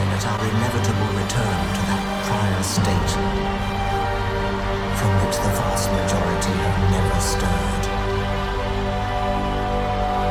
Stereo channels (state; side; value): identical; both; correlation 1.00